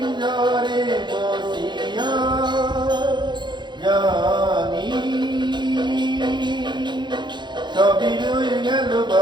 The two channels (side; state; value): left; late; 0.22 ms